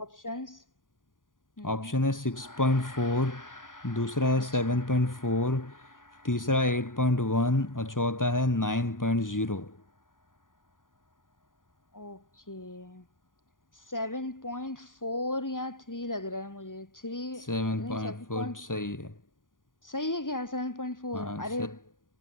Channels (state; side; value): late; right; 0.89 ms